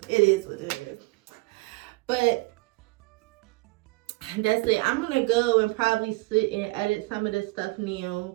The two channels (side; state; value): left; quieter; 24.6 dB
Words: it is what it is. But that's it. I'm going to go and probably sit and edit some of this stuff